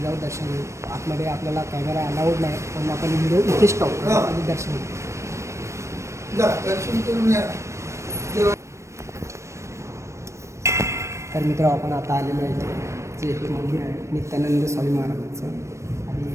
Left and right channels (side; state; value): left; late; 0.14 ms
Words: जाऊ, दर्शन घेऊ. आतमध्ये आपल्याला कॅमेरा अलाउड नाही म्हणून आपण व्हिडिओ इथेच टाकतो आणि दर्शन घेऊ. तर मित्र आपण आता आलेलो आहे जे हे मंदिर आहे नित्यानंद स्वामी महाराजांचं,